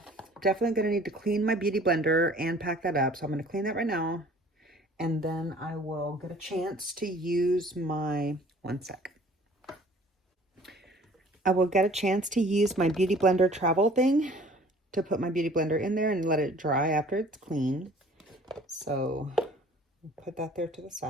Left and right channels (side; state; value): both; normal; correlation 0.51